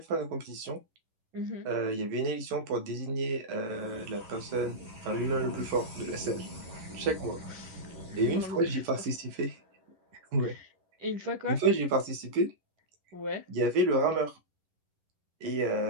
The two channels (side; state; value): left; late; 11 ms